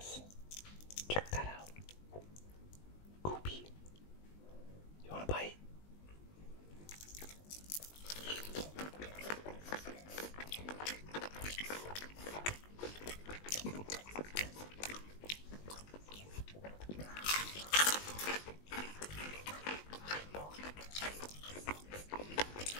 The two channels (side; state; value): right; late; 20 ms